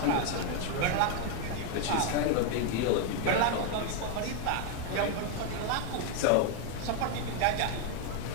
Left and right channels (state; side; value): different; both; correlation 0.01